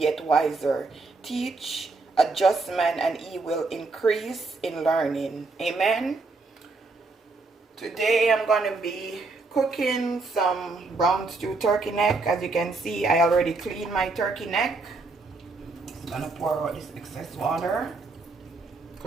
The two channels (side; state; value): left; quieter; 3.7 dB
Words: wiser. Teach a just man and he will increase in learning. Amen. Today I'm going to be cooking some brown stew turkey neck. As you can see, I already cleaned my turkey neck. I'm going to pour out this excess water.